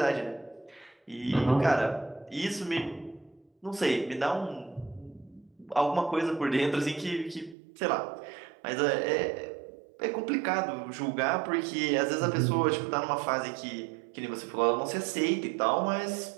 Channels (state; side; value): drops out; left; at 7.6 s